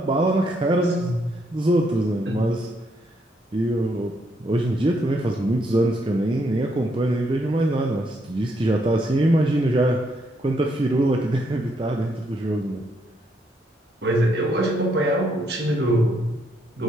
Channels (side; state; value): both; normal; correlation 0.75